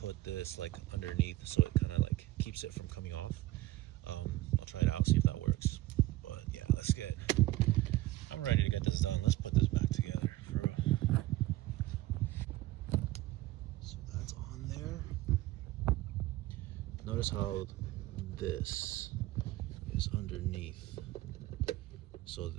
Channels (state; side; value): quieter; left; 17.3 dB